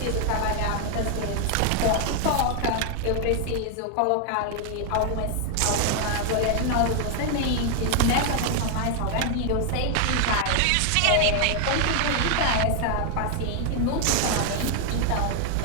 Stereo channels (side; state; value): both; different; correlation 0.00